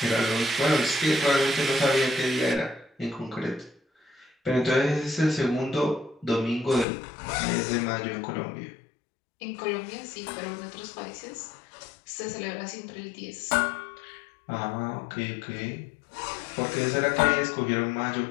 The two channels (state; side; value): drops out; right; at 6.9 s